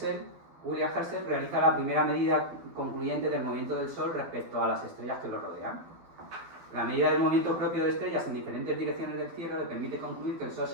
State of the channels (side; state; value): left; late; 12 ms